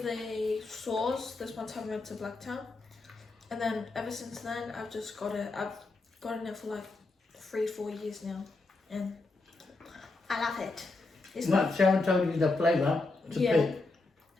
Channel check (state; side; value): quieter; right; 3.4 dB